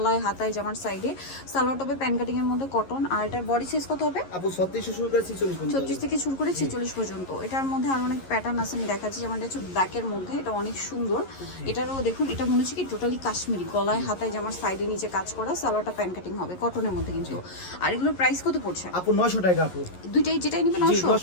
হাতায় জামার সাইডে সালোয়ার টপে প্যান কাটিং এর মধ্যে কটন। আর এটার বডি সাইজ কত হবে আপু 36 শুরু করে 46 পর্যন্ত, 36 থেকে শুরু করে 46 পর্যন্ত। এটার মধ্যে আরো অনেক প্যাটার্ন আছে, আমি দেখাচ্ছি। যেমন এটা হচ্ছে ব্ল্যাকের মধ্যে, এটা অনেক সুন্দর। এটারও দেখুন, এটা মনে হচ্ছে কি টোটালি কাশ্মীরি, গলায় হাতায় জামার সাইডে নিচে কাজ করা, সালোয়ারটা প্যান কাটিং হবে কটনের মধ্যে কিন্তু। আর এগুলোর প্রাইস কত পড়ছে আপু? 900 টাকা আপু। দুইটাই যেটাই নিবে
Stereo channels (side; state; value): right; late; 11 ms